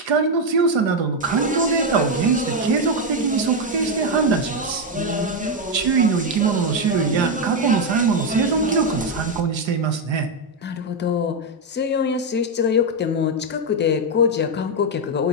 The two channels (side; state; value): both; normal; correlation 0.04